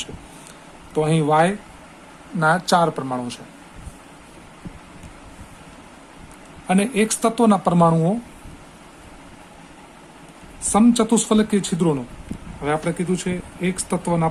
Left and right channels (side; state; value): both; identical; correlation 1.00